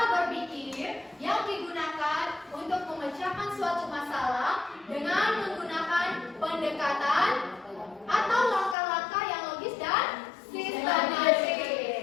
berpikir yang digunakan untuk memecahkan suatu masalah dengan menggunakan pendekatan atau langkah-langkah yang logis dan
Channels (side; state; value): right; drops out; at 8.8 s